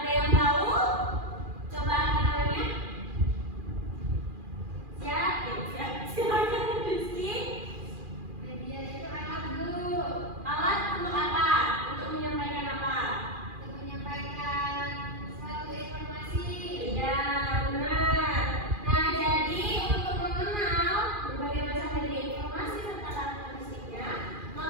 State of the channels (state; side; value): late; left; 2.4 ms